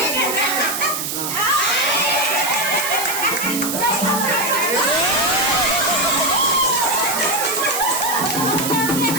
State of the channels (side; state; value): right; noise; hiss, 3 dB below the sound